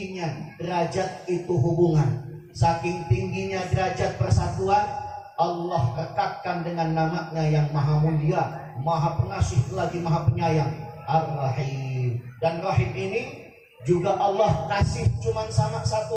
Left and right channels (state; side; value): identical; both; correlation 1.00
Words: derajat itu hubungan, saking tingginya derajat persatuan, Allah rekatkan dengan namanya yang maha mulia, maha pengasih lagi maha penyayang, Ar-Rahim. Dan Rahim ini juga Allah kasih cuma sama